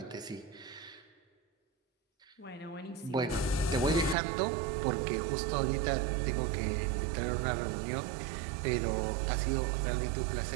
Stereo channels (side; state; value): left; drops out; at 4.2 s